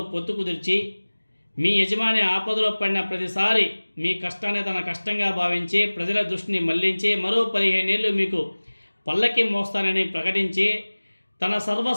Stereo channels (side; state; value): both; inverted; correlation -1.00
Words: పొత్తు కుదిర్చి మీ యజమాని ఆపదలో పడిన ప్రతిసారి మీ కష్టాన్ని తన కష్టంగా భావించి ప్రజల దృష్టిని మళ్లించి మరో 15 ఏళ్ళు మీకు పల్లకి మోస్తానని ప్రకటించి తన